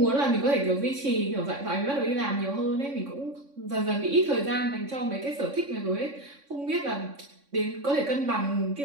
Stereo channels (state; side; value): late; left; 3.6 ms